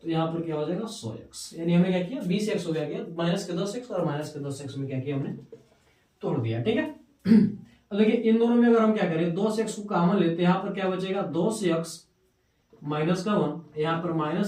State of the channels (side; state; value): both; identical; correlation 1.00